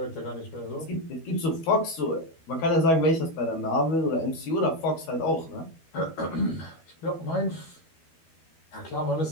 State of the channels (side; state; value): right; late; 12 ms